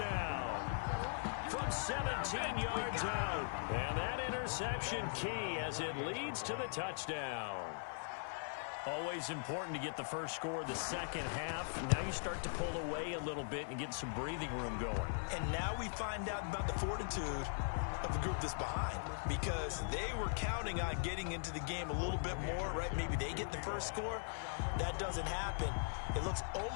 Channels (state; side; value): silent; right; 51 dB below the other